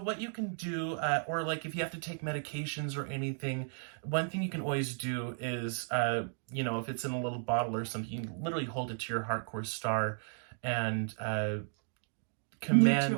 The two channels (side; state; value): left; silent; digital silence